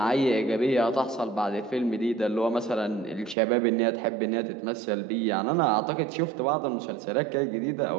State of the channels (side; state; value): left; drops out; at 3.4 s